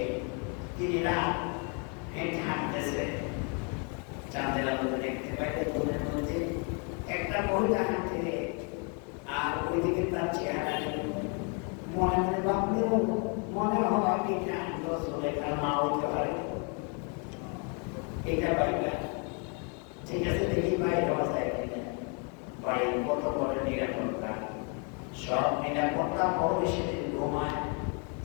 তিনি রাত হেঁটে হাঁটতেছে, চাঁদের আলোতে দেখতে পাইতে ঘুমের মধ্যে একটা মহিলা হাঁটে, আর ওইদিকে তার চেহারা মনে মনে ভাবলেও মনে হয় এটা সুলেখার মা হইতে পারে। এটা পাইবা ঠিক আছে, দেখি বাইরে হওয়া যায় কিনা। বাড়ির কত বড় নিরাপত্তা, সব এটা করতাম বড় সেদিন ঘুমায়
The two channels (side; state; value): right; quieter; 37.3 dB